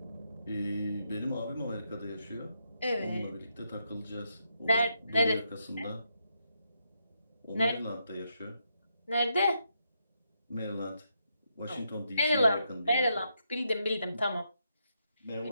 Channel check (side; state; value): both; inverted; correlation -0.81